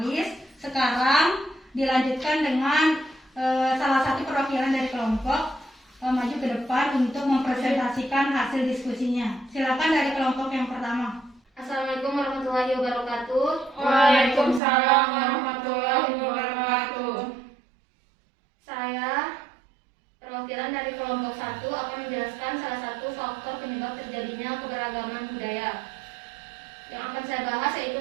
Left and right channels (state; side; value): drops out; left; at 14.6 s